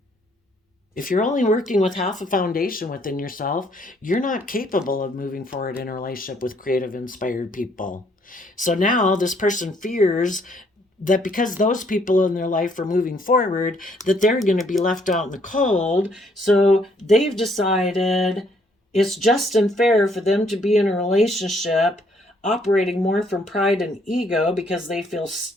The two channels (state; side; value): normal; both; correlation 0.67